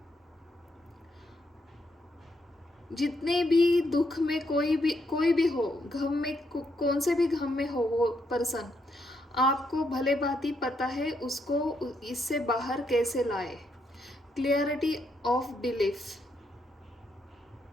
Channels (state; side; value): normal; both; correlation 0.77